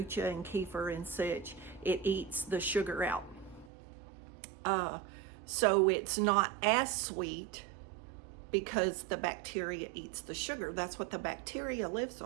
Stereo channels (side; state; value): left; drops out; at 3.7 s